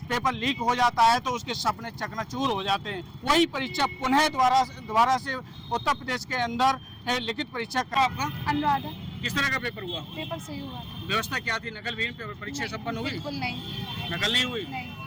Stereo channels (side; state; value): both; identical; correlation 1.00